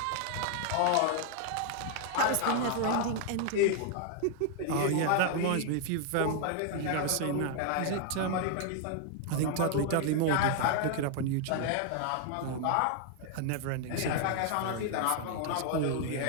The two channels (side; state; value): both; different; correlation 0.00